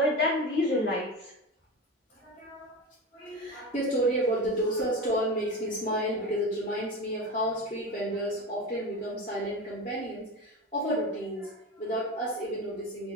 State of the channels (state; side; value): normal; both; correlation 0.25